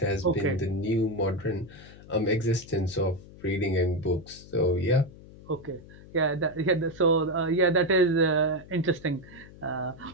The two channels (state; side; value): noise; left; hum, 19 dB below the sound